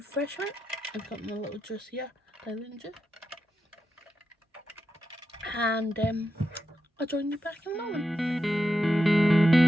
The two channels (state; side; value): normal; both; correlation 0.87